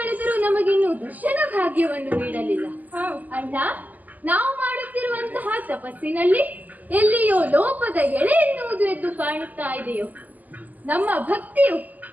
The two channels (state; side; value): late; left; 0.081 ms